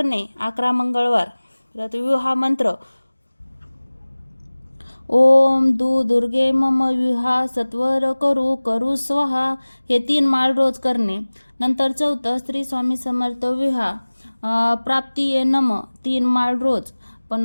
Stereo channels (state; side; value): inverted; both; correlation -1.00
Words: 11 मंगळवार. परत विवाह मंत्र ओम दुर्गे मम विवाह सत्वर करू करू स्वाहा, हे 3 माळ रोज करणे. नंतर चौथं श्री स्वामी समर्थ विवाह प्राप्ती ये नम 3 माळ रोज.